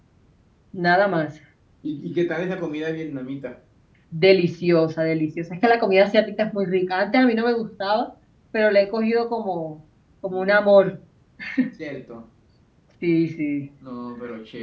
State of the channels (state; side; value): identical; both; correlation 1.00